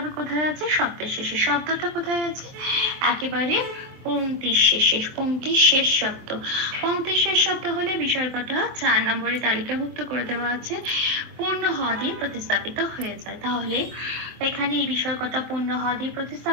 কোথায় আছে? শব্দের শেষে। শব্দটা কোথায় আছে? একেবারে পংক্তির শেষে, পংক্তির শেষ শব্দ। পংক্তির শেষ শব্দ হলে বিসর্গটা 4 নম্বরে তালিকাভুক্ত করে দেওয়া আছে পূর্ণ হ দিয়ে প্রতিস্থাপিত হয়ে যায়। তাহলে এখানে এই বিসর্গটা পূর্ণ হ দিয়ে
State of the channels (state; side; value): late; left; 23 ms